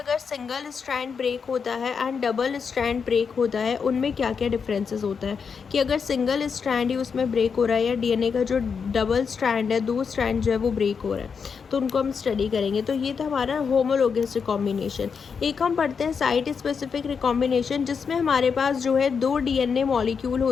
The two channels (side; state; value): right; quieter; 6.0 dB